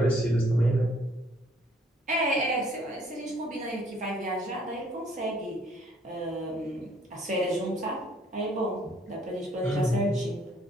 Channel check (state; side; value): normal; both; correlation 0.62